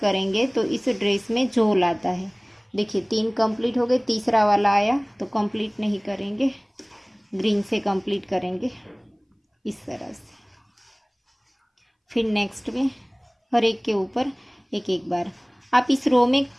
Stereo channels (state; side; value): identical; both; correlation 1.00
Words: तो इस ड्रेस में झोल आता है। देखिए 3 कंप्लीट हो गए, तीसरा वाला आया तो कंप्लीट नहीं करेंगे, ग्रीन से कंप्लीट करेंगे इस तरह से। फिर नेक्स्ट में हर एक के ऊपर एक एक बार। आप इस रो में